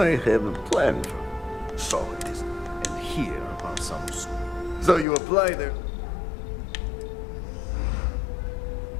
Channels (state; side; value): drops out; right; at 5.1 s